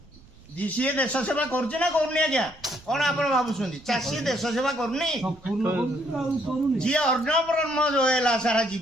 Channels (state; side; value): noise; right; rumble, 26 dB below the sound